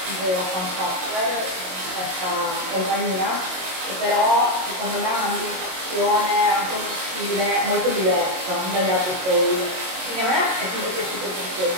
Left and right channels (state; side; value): late; left; 22 ms